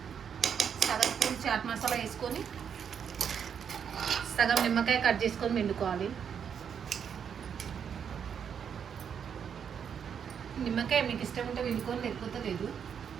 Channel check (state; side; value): quieter; left; 7.6 dB